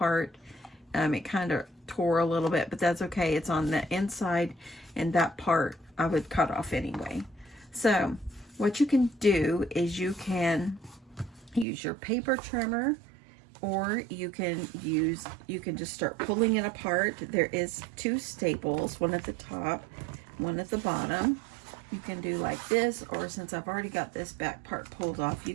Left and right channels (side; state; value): left; drops out; at 11.7 s